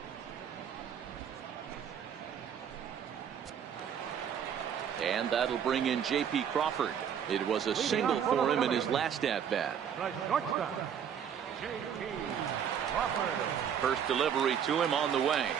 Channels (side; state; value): left; quieter; 8.3 dB